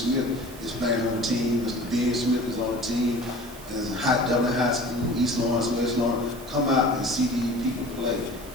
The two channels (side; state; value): right; noise; hiss, 18 dB below the sound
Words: is playing on the team. Mr. Ben Smith is on the team. There's Dublin High School, East Lawrence, West Lawrence. Come out and see these people play